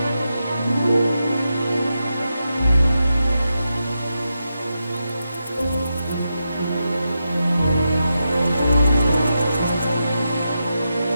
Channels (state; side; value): inverted; both; correlation -0.87